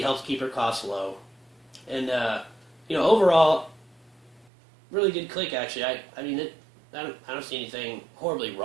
helps keep her costs low. And, overall, really good click, actually. I don't see anything horribly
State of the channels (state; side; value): drops out; left; at 4.5 s